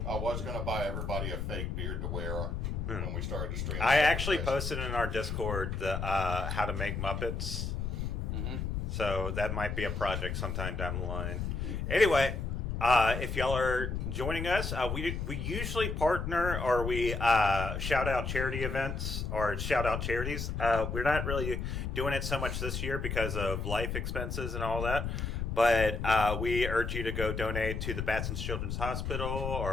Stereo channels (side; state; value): left; noise; rumble, 3 dB below the sound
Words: I was going to buy everybody a fake beard to wear when we started to stream. I actually posted in our Discord the how to make Muppets. So that might be a project sometime down the line. Anyway, if y'all are joining us, we usually partner or we shout out charity events or shout out charities. We're not really doing it so much this year because of life expenses and all that. But we urge you to go donate to the Batson's Children's Hospital